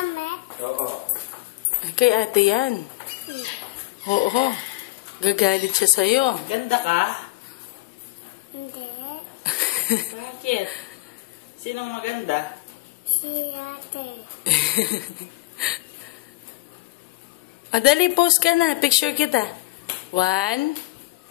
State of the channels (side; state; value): right; quieter; 21.0 dB